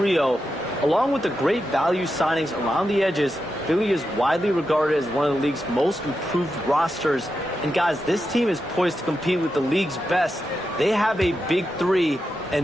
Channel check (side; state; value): both; normal; correlation 0.88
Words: along with the great value signings around the edges. Philly is widely regarded as one of the league's most improved rosters. And guys, this team is poised to compete with the league's best. They have a big 3.